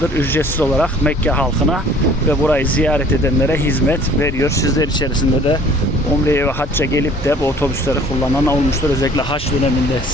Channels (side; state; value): both; normal; correlation 0.52